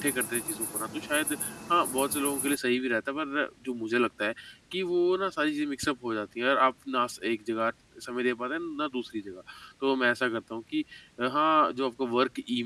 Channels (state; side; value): identical; both; correlation 1.00